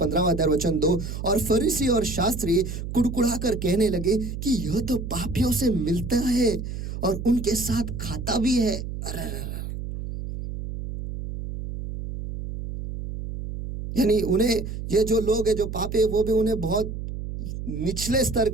अध्याय वचन 2, और फरीसी और शास्त्री कुड़कुड़ा कर कहने लगे कि यह तो पापियों से मिलता है और उनके साथ खाता भी है। यानी उन्हें, ये जो लोग हैं जो पापी है, वो भी उन्हें बहुत निचले स्तर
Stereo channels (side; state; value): right; noise; hum, 7 dB below the sound